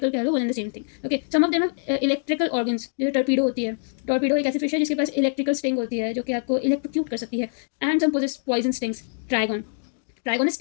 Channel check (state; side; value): silent; right; digital silence